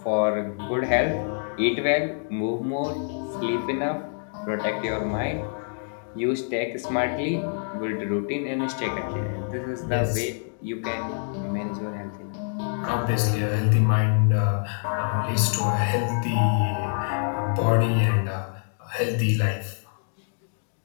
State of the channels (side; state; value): right; silent; digital silence